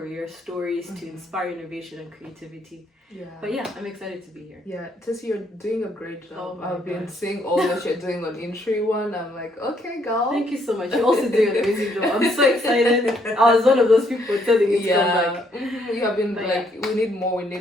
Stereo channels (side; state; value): both; normal; correlation 0.70